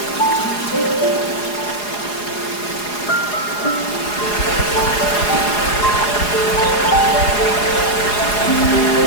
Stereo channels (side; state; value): right; late; 4.8 ms